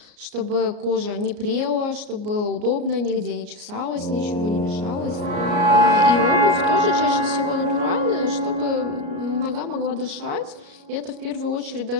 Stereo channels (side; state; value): left; late; 33 ms